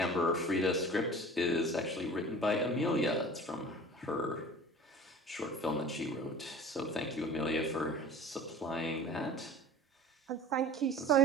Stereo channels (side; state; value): both; normal; correlation 0.41